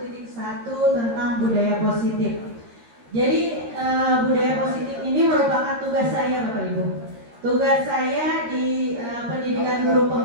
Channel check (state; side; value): late; left; 13 ms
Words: tentang budaya positif. Jadi budaya positif ini merupakan tugas saya Bapak Ibu. Tugas saya di pendidikan guru